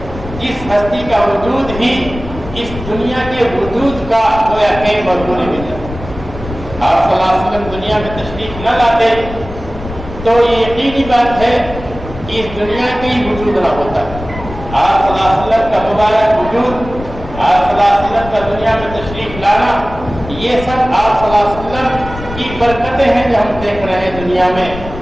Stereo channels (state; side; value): noise; left; rumble, 12 dB below the sound